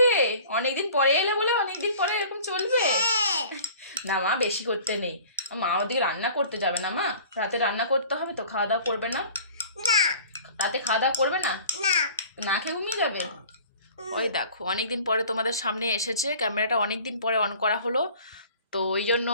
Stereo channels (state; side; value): inverted; both; correlation -0.46